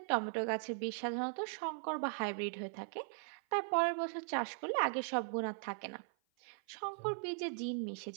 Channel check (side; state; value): left; silent; 52 dB below the other